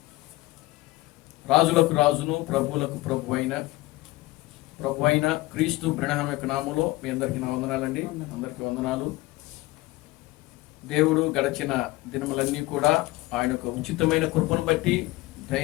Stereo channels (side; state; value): right; quieter; 19.8 dB